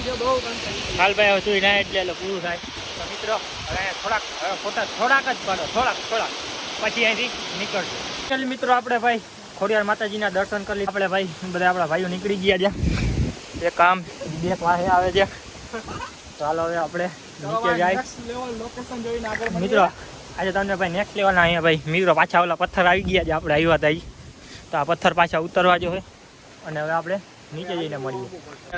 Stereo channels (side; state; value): both; identical; correlation 1.00